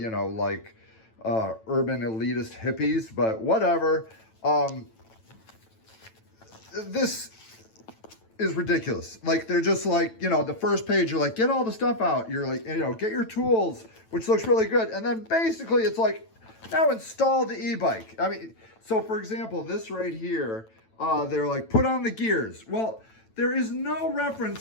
know, like urban elitist hippies, but whatever. This is ridiculous. Like, they're just like, you know, the first page, you're like, get all the stuff out. You're like, you know, get your tools, which looks really good. And then basically it's like, now install the e-bike. I mean, so for example, this right here, they're like, put on the gears. Well, there is no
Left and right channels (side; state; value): right; late; 9.0 ms